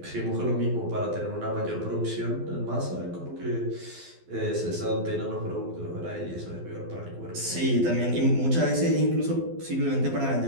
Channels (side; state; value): left; late; 12 ms